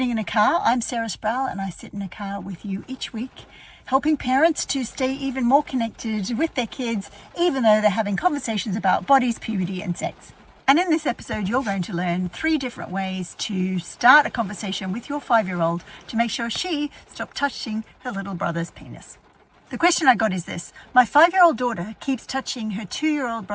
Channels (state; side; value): identical; both; correlation 1.00